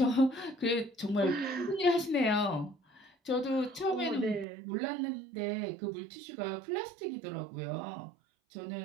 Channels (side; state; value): left; drops out; at 4.5 s